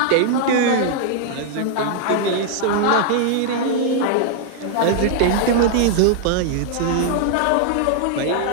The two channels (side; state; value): both; different; correlation -0.01